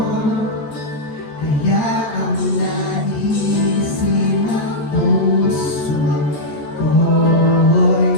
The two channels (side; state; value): right; late; 13 ms